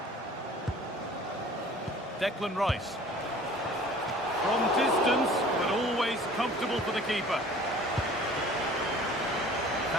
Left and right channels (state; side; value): normal; both; correlation 0.48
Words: Declan Rice. From distance, but always comfortable for the keeper.